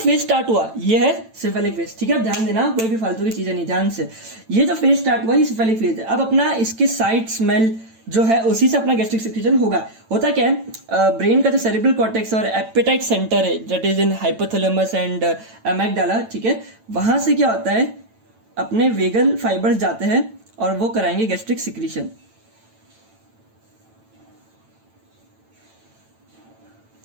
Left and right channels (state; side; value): late; left; 9.0 ms